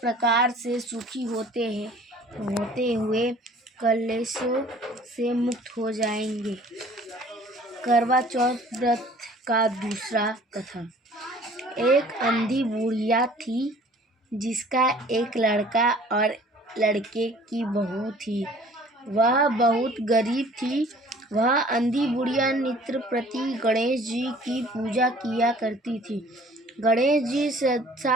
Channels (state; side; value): normal; both; correlation 0.52